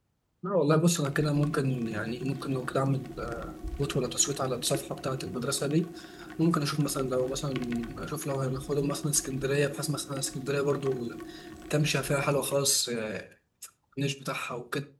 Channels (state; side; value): identical; both; correlation 1.00